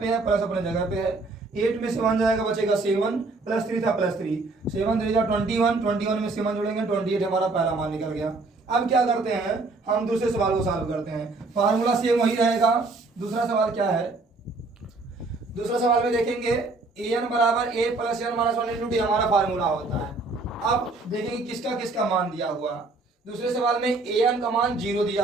है, प्लस अपने जगह पे है, 8 में से 1 जाएगा, बचेगा 7 प्लस 3 था प्लस 3, 7 3 21 में 7 जोड़ेंगे 28 हमारा पहला मान निकल गया। अब क्या करते हैं, हम दूसरे सवाल को सॉल्व करते हैं। फार्मूला सेम वही रहेगा। दूसरा सवाल क्या है, दूसरा सवाल में देखेंगे एन बराबर a plus n minus 1 into d हमारा फार्मूला होता है। अब देखेंगे किसका किसका मान दिया हुआ। दूसरे सवाल में एन का मान 0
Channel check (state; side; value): quieter; left; 3.5 dB